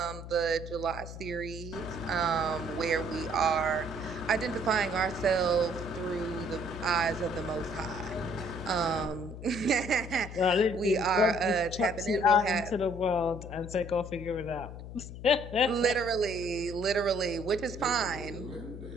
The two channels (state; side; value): noise; left; hum, 11 dB below the sound